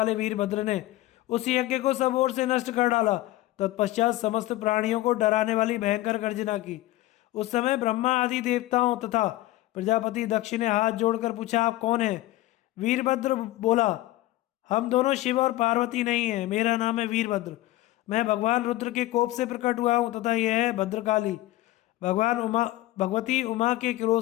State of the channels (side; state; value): right; quieter; 16.7 dB